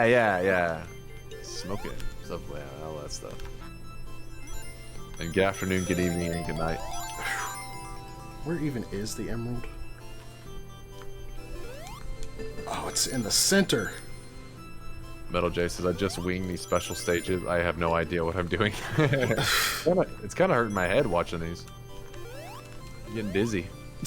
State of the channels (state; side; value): identical; both; correlation 1.00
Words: Smoking, stuff like that, all that stuff. And good afternoon, good evening, and good night. Where even is the emerald? Oh, it's in the center. Metal J says, I just wing these special stages. I have no idea what I'm doing. It's kind of hurting my head watching these. I'm getting dizzy.